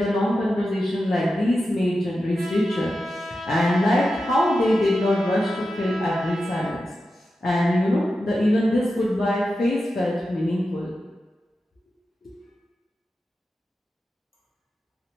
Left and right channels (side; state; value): both; normal; correlation 0.91